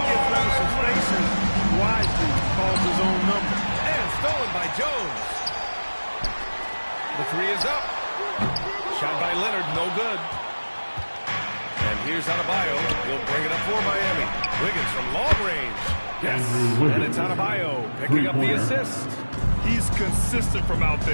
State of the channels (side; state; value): both; inverted; correlation -1.00